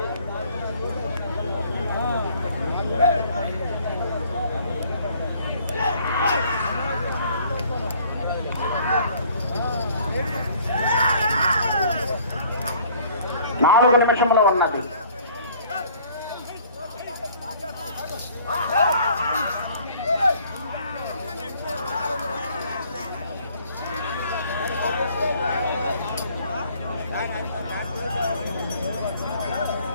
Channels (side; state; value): both; inverted; correlation -0.56